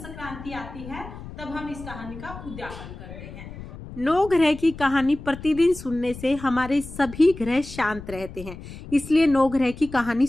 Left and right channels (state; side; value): noise; left; rumble, 13 dB below the sound